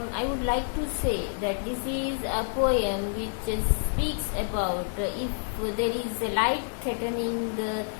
I would like to say that this is a poem which speaks about if there is a life threatening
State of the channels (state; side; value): silent; right; digital silence